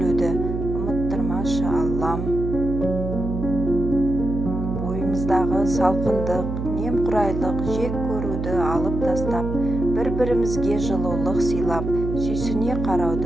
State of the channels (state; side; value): noise; right; hum, 4 dB below the sound